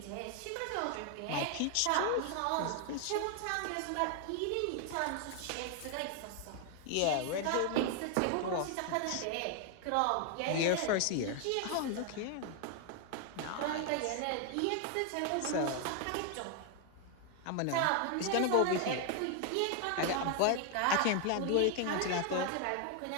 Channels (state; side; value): different; both; correlation 0.00